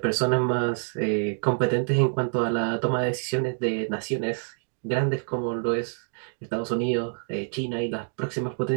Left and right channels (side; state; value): left; silent; digital silence